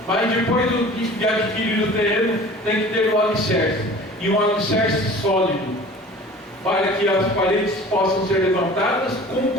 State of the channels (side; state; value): both; normal; correlation 0.44